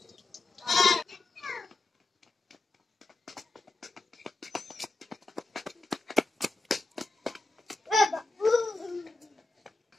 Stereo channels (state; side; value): quieter; right; 3.2 dB